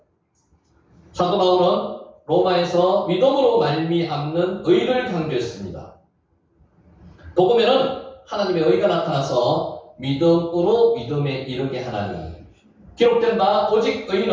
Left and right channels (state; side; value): identical; both; correlation 1.00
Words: 사도 바울은 로마에서 믿음으로 말미암는 의를 강조했습니다. 복음에는 하나님의 의가 나타나서 믿음으로 믿음에 이르게 하나니, 기록된 바 오직